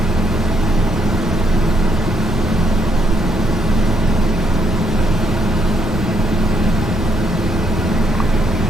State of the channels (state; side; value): normal; both; correlation 0.73